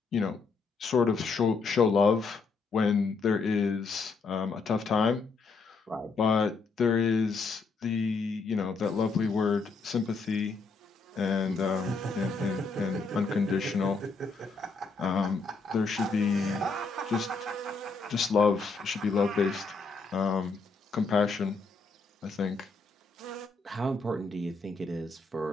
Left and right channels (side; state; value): right; quieter; 4.3 dB